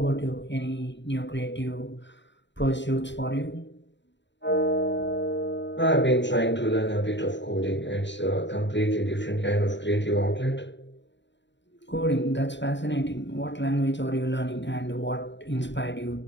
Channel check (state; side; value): late; right; 0.52 ms